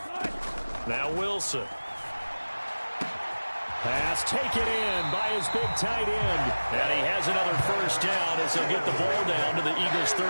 Now Wilson. Pass taken in by his big tight end. And he has another first down as he'll get the ball down to the Eagles'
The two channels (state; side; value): inverted; both; correlation -1.00